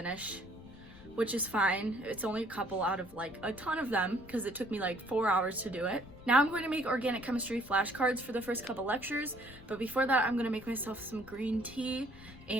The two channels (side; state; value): left; noise; rumble, 19 dB below the sound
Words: which is fine. It's only a couple out of like a ton of them because it took me like 4 hours to do it. Now I'm going to make organic chemistry flashcards for the first couple lectures, but before that I'm going to make myself some green tea